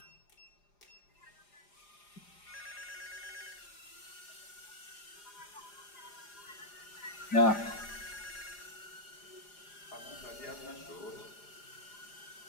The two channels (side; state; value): right; late; 4.9 ms